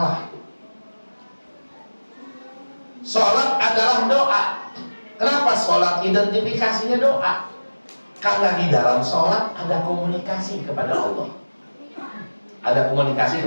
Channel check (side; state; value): both; inverted; correlation -1.00